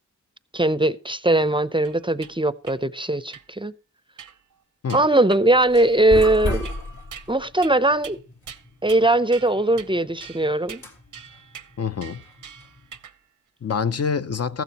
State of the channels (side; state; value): both; normal; correlation 0.53